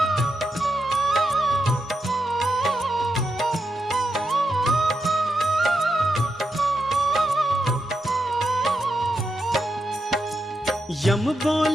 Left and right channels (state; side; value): normal; both; correlation 0.85